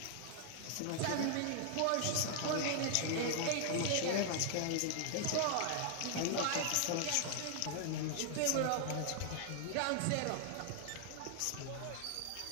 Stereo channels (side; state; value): both; different; correlation 0.00